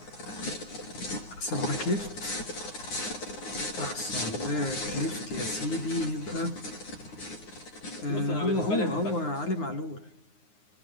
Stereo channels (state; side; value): late; right; 9.6 ms